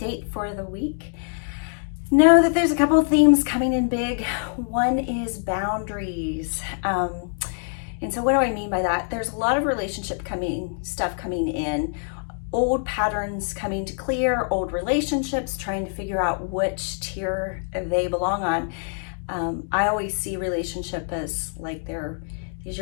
for the week. Know that there's a couple of themes coming in big. One is boundaries. And so what do I mean by that? There's a lot of stuff coming in, old patterns coming to clear, old relationships, trying to figure out which tier they belong on. I always see relationship as like there's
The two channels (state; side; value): silent; right; 56 dB below the other